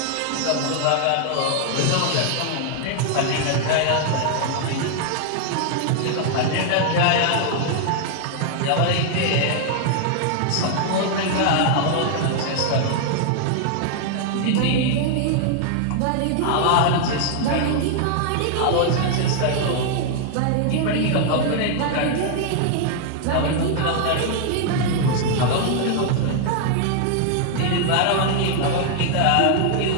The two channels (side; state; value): both; different; correlation 0.00